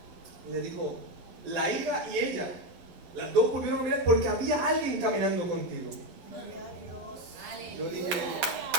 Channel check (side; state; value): left; late; 12 ms